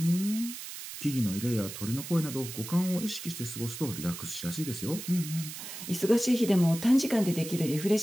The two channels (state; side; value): noise; right; hiss, 10 dB below the sound